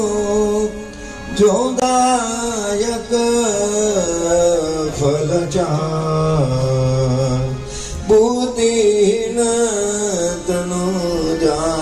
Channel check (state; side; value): identical; both; correlation 1.00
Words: जो दायक फल चार बुद्धिहीन तनु